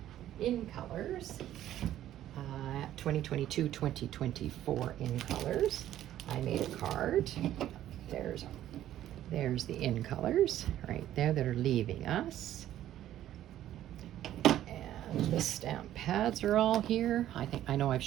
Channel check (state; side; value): quieter; left; 12.5 dB